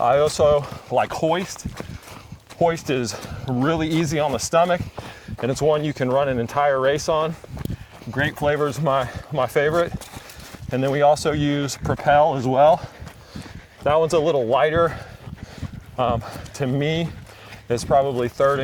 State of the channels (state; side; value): identical; both; correlation 1.00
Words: also like Hoist. Hoist is really easy on the stomach, and it's one you can run an entire race on. Grape flavor is my favorite. And then we also use Propel as well. That one's a little lighter. To me, it's probably third